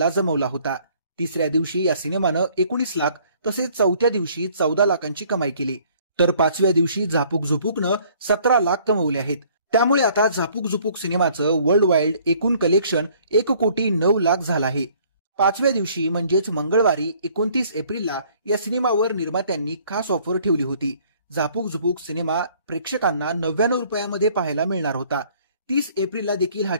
जमवला होता. तिसऱ्या दिवशी या सिनेमानं 19 लाख तसेच चौथ्या दिवशी 14 लाखांची कमाई केली. तर 5व्या दिवशी झापूक झुपूकनं 17 लाख कमवले आहेत. त्यामुळे आता झापूक झुपूक सिनेमाचं वर्ल्ड वाईड एकूण कलेक्शन 1,09,00,000 झालं आहे. 5व्या दिवशी म्हणजेच मंगळवारी 29 एप्रिलला या सिनेमावर निर्मात्यांनी खास ऑफर ठेवली होती. झापूक झुपूक सिनेमा प्रेक्षकांना 99 रुपयामध्ये पाहायला मिळणार होता. 30 एप्रिलला देखील हा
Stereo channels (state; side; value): inverted; both; correlation -0.59